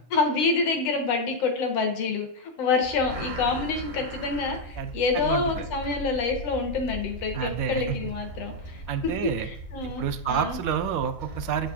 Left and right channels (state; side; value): late; right; 7.7 ms